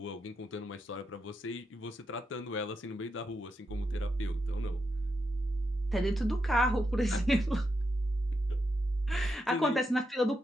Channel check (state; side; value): normal; both; correlation 0.84